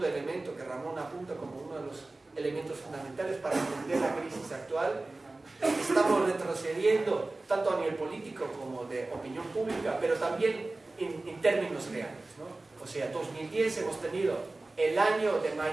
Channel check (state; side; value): quieter; left; 3.1 dB